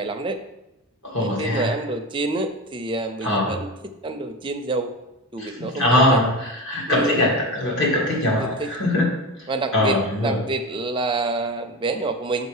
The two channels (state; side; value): normal; both; correlation 0.24